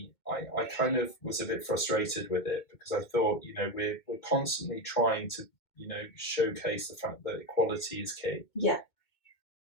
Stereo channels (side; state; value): right; late; 2.2 ms